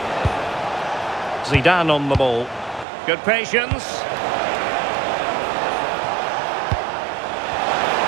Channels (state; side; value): drops out; left; at 2.9 s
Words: Zidane on the ball. Good patience.